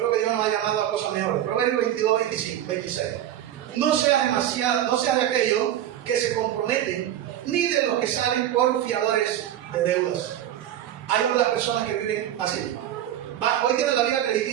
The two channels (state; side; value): quieter; left; 11.7 dB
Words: que Dios nos ha llamado a cosas mejores. Proverbios 22:26. No seas de aquellos que se comprometen, ni de los que salen por fiadores de deudas. Hay otras personas que viven así. Hoy tienen la vida